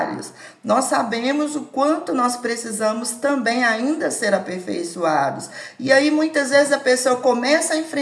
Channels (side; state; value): both; identical; correlation 1.00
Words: nós sabemos o quanto nós precisamos também ainda ser aperfeiçoados. E aí muitas vezes a pessoa começa a